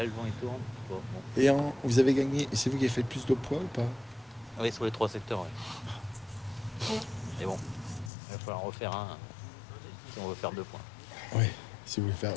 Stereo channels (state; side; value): drops out; right; at 8.1 s